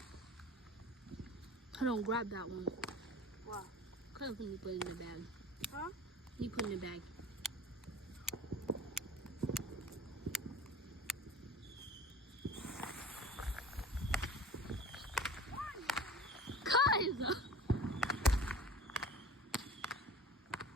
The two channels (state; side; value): normal; both; correlation 0.41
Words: I don't grab that one. Wow. Kind of think you put it in the bag. Huh? You put it in the bag. Guys!